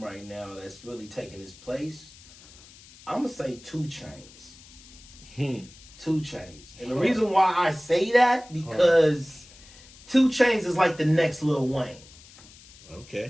right now, that's really taking his place, I'm gonna say 2 Chainz. 2 Chainz. And the reason why I say that, because 2 Chainz is like the next Lil Wayne.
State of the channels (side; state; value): left; noise; hiss, 22 dB below the sound